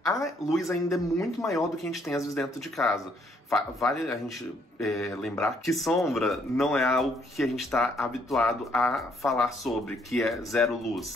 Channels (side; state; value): both; normal; correlation 0.68